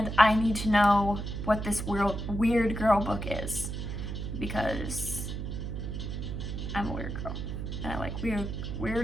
I need to know what this weird girl book is, because I'm a weird girl and I like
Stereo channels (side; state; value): right; noise; hum, 5 dB below the sound